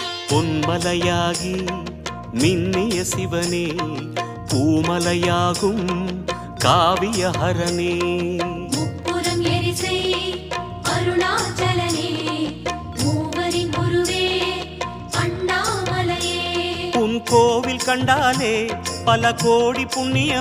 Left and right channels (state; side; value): identical; both; correlation 1.00